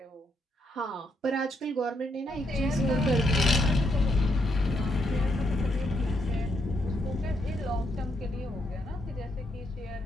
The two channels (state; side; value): normal; both; correlation 0.77